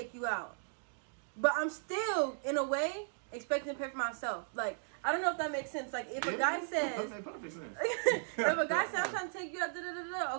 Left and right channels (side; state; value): left; silent; digital silence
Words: you out, but I'm still in a way expecting to pay for myself. Like. I don't know if that makes sense. Like, if a guy says... That makes perfect sense. If a guy says, I'm trying to take you out,